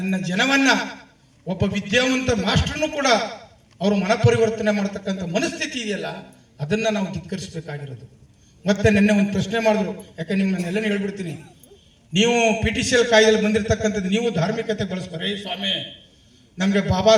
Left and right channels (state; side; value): identical; both; correlation 1.00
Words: ಜನವನ್ನ, ಒಬ್ಬ ವಿದ್ಯಾವಂತ ಮಾಸ್ಟರ್ನು ಕೂಡ ಅವರು ಮನಪರಿವರ್ತನೆ ಮಾಡ್ತಕ್ಕಂಥ ಮನಸ್ಥಿತಿ ಇದೆಯಲ್ಲ, ಅದನ್ನ ನಾವು ಧಿಕ್ಕರಿಸಬೇಕಾಗಿರೋದು. ಮತ್ತೆ ನಿನ್ನೆ ಒಂದು ಪ್ರಶ್ನೆ ಮಾಡಿದ್ರು, ಯಾಕೆ ನಿಮ್ಮನ್ನೆಲ್ಲ ಹೇಳ್ಬಿಡ್ತೀನಿ. ನೀವು PTCL ಕಾಯ್ದೆಯಲ್ಲಿ ಬಂದಿರತಕ್ಕಂಥದ್ದು ನೀವು ಧಾರ್ಮಿಕತೆ ಬಳಸ್ತಾರೆ. ಸ್ವಾಮಿ, ನಮಗೆ ಬಾಬಾ